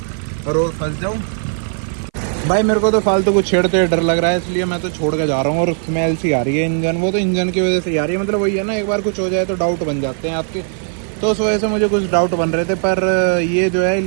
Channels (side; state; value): left; silent; 58 dB below the other